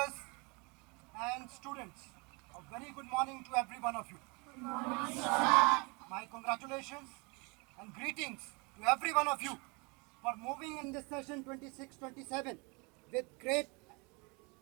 and students. A very good morning to every one of you. Good morning, sir. My congratulations and greetings to every one of you for moving in this session 26-27 with great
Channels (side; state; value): left; quieter; 29.8 dB